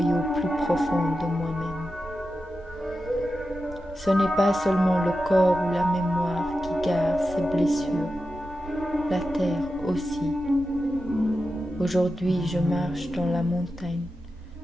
au plus profond de moi-même. Ce n'est pas seulement le corps ou la mémoire qui garde ses blessures, la terre aussi. Aujourd'hui, je marche dans la montagne,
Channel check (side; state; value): both; normal; correlation 0.91